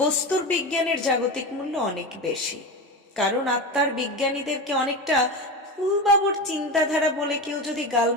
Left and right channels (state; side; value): normal; both; correlation 0.22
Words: বস্তুর বিজ্ঞানের জাগতিক মূল্য অনেক বেশি। কারণ আত্মার বিজ্ঞানীদেরকে অনেকটা ফুলবাবুর চিন্তাধারা বলে কেউ যদি